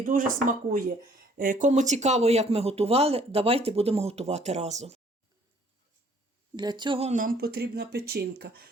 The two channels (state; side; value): normal; both; correlation 0.59